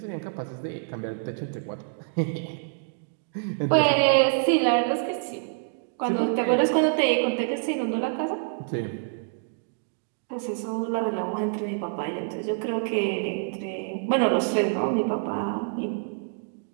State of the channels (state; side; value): silent; left; digital silence